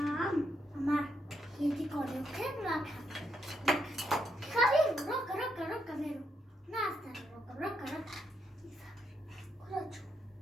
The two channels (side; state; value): both; normal; correlation 0.79